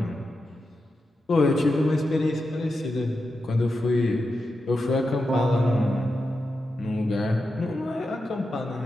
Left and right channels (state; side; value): normal; both; correlation 0.89